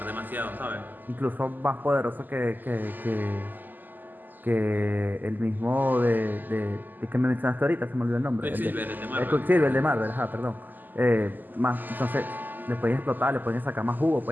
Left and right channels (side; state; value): left; late; 0.087 ms